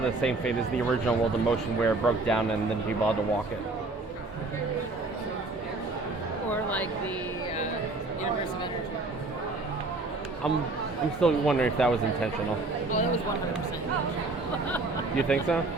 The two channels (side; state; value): left; quieter; 3.3 dB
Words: same fate as the original World of Motion, where it broke down and then people had to walk it. Or like the Universe of Energy. I'm still wondering if that was intentional. Oh, that was 100%. You think so?